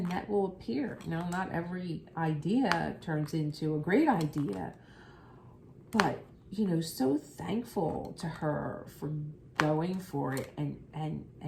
will appear. Not every idea turns into a great idea, but so thankful to her for going for it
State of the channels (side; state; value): both; identical; correlation 1.00